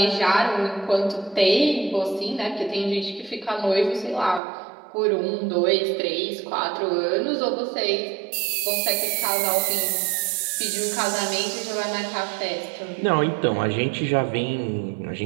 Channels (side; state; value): left; drops out; at 4.4 s